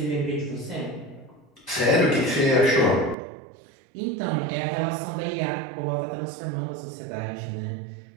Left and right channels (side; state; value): left; drops out; at 3.2 s